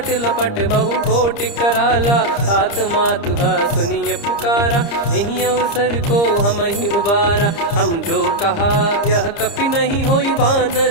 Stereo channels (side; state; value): right; late; 30 ms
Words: लपट बहु कोट कराला सात मातुहा सुनिय पुकारा यही अवसर को हम ही उबारा हम जो कहा यह कपि नहीं होई